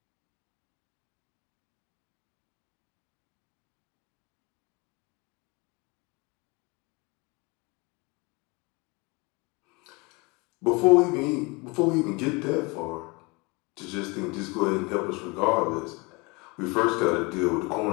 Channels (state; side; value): quieter; right; 27.2 dB